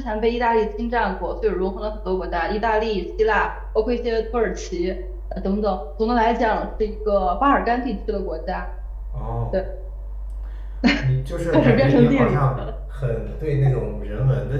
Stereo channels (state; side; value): identical; both; correlation 1.00